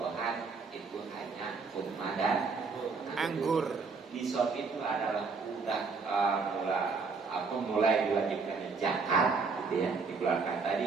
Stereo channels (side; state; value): left; quieter; 4.7 dB